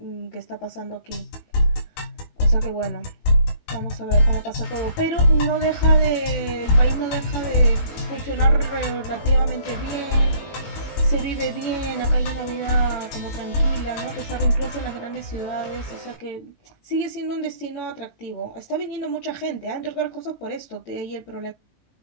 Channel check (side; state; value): right; late; 18 ms